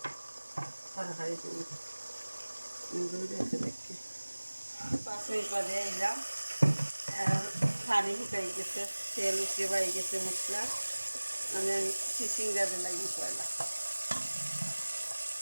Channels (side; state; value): both; inverted; correlation -1.00